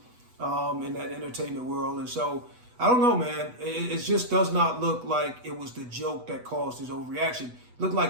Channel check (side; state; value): left; late; 8.1 ms